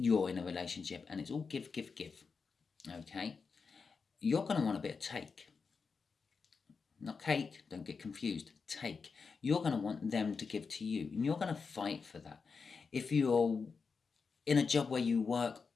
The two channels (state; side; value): quieter; right; 5.1 dB